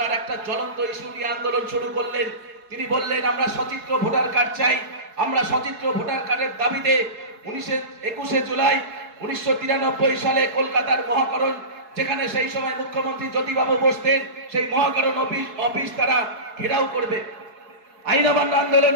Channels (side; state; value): left; late; 4.7 ms